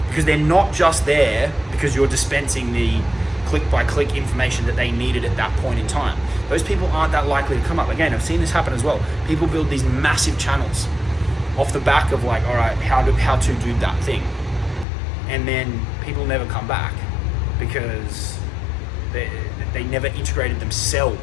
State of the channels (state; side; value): drops out; right; at 14.9 s